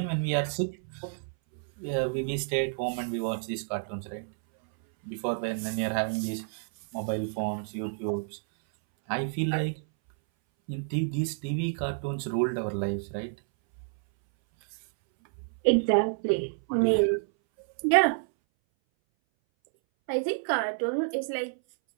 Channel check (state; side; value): silent; left; 58 dB below the other